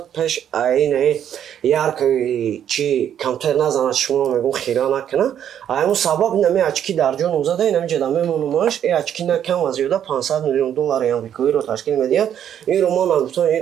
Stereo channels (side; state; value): left; quieter; 9.7 dB